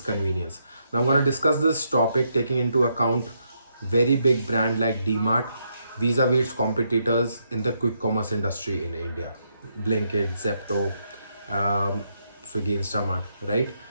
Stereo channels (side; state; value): both; inverted; correlation -0.78